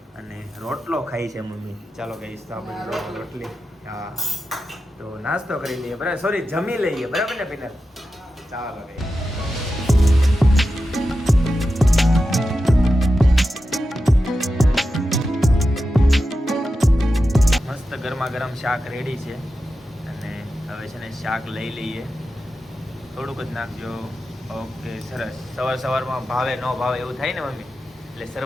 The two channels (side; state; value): both; normal; correlation 0.91